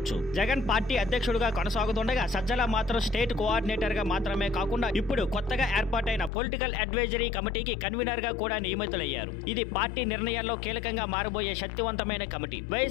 జగన్ పార్టీ అధ్యక్షుడిగా కొనసాగుతుండగా సజ్జల మాత్రం స్టేట్ కోఆర్డినేటర్ గా మాత్రమే కాకుండా ఇప్పుడు కొత్తగా ఏర్పాటైన పొలిటికల్ అడ్వైజరీ కమిటీకి కన్వీనర్ గా కూడా నియమితులయ్యారు. ఇది పార్టీ నిర్ణయాల్లో కీలకంగా మారబోయే శక్తివంతమైన కమిటీ.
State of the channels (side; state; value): right; drops out; at 6.3 s